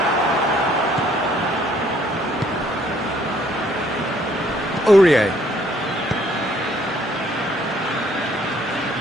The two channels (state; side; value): normal; both; correlation 0.63